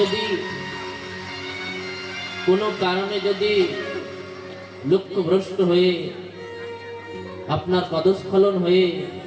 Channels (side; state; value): both; identical; correlation 1.00